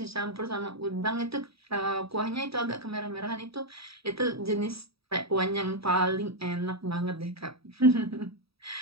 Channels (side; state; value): left; late; 0.77 ms